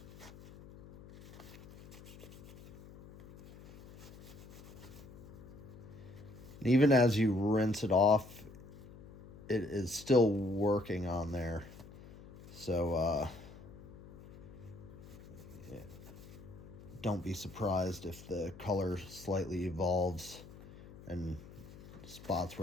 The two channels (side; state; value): left; noise; hum, 18 dB below the sound